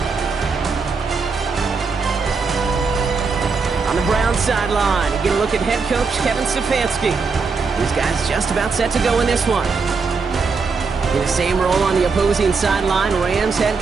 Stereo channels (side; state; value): left; quieter; 4.8 dB